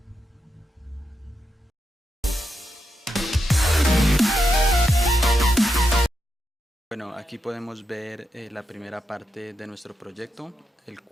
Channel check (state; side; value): normal; both; correlation 0.85